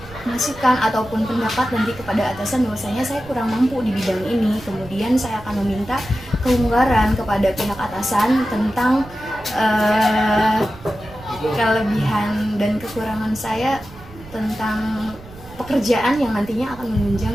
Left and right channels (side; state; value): right; noise; rumble, 18 dB below the sound